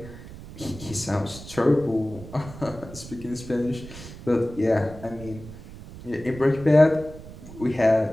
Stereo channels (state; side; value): noise; right; rumble, 15 dB below the sound